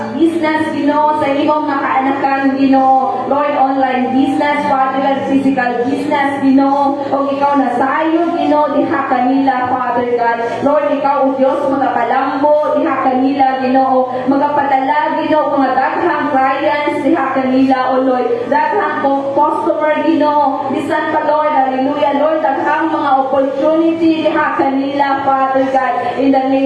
business, sa imong mga kaanakan, Lord, online business, Father God, physical business, o ikaw na sayo, diha kanila, Father God. Lord, ikaw, Diyos, magapalambo, diha kanila, magapadala, mga daghang clients, diha kanila, O Lord, daghang customer, bisan pa, Lord, hallelujah, Lord, daghang mga opportunity, diha kanila, Father God, in the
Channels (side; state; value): both; identical; correlation 1.00